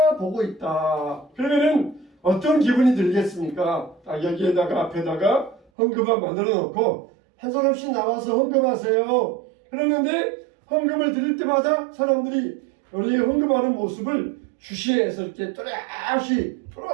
보고 있다. 그러면은 어떤 기분이 들겠습니까? 여기에다가 앞에다가 헌금함 만들어 놓고 한 사람씩 나와서 헌금하세요. 그러는데 헌금을 드릴 때마다 사람들이 우리 헌금하는 모습을 주시해서 이렇게 또렷이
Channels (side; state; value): left; drops out; at 5.6 s